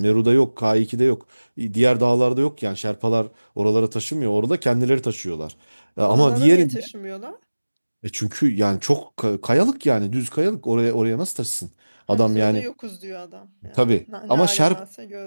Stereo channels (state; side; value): inverted; both; correlation -1.00